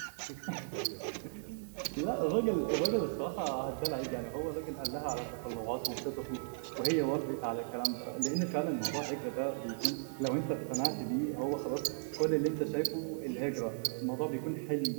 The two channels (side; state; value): left; silent; 54 dB below the other